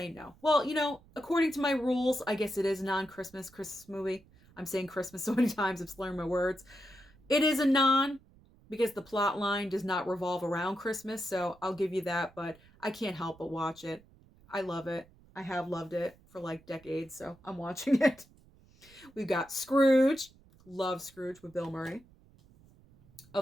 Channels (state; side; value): noise; right; rumble, 27 dB below the sound